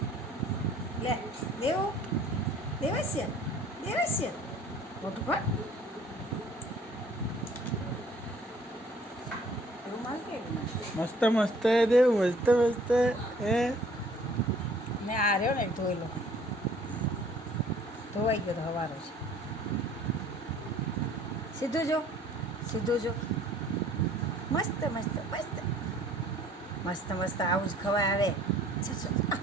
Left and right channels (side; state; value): both; normal; correlation 0.55